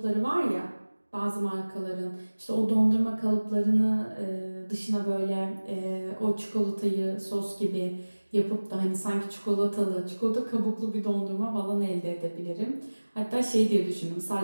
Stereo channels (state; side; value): inverted; both; correlation -1.00